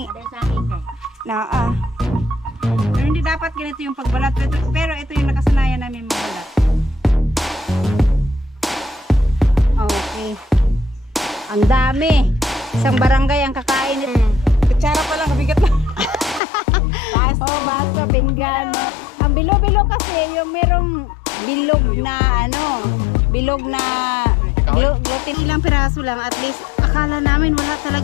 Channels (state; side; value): drops out; right; at 16.4 s